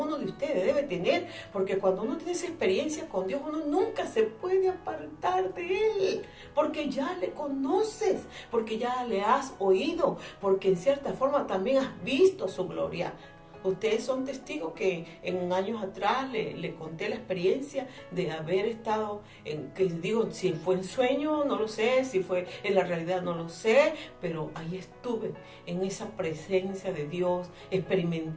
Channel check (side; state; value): both; identical; correlation 1.00